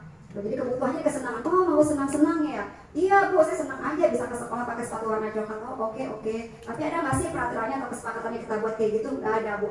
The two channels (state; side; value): identical; both; correlation 1.00